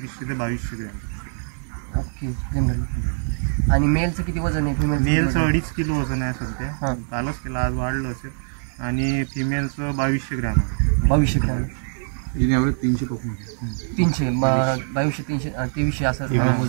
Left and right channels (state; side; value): silent; left; 59 dB below the other